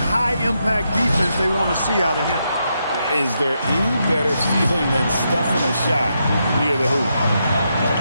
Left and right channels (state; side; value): inverted; both; correlation -0.82